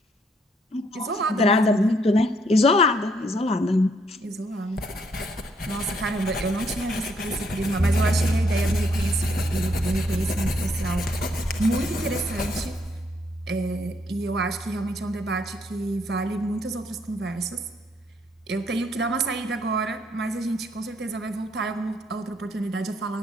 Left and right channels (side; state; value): both; normal; correlation 0.71